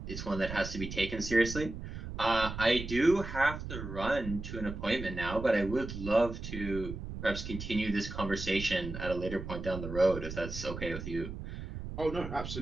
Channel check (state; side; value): noise; right; rumble, 8 dB below the sound